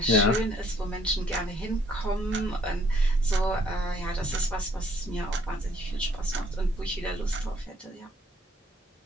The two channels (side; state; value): both; normal; correlation 0.64